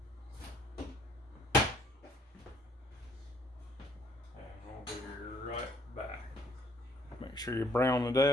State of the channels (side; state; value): both; normal; correlation 0.64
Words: And we'll be right back. Make sure you brown it